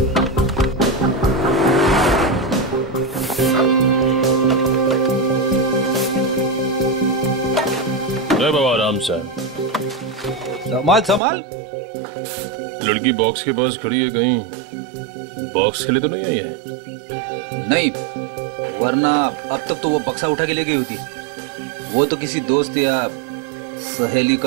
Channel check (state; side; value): drops out; left; at 11.2 s